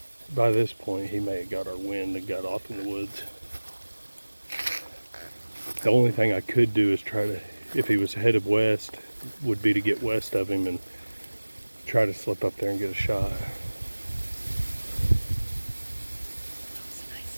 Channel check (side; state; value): both; inverted; correlation -1.00